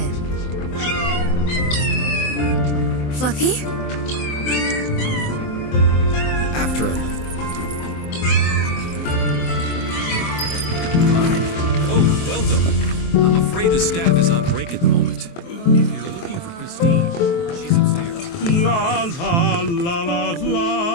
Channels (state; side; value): late; right; 23 ms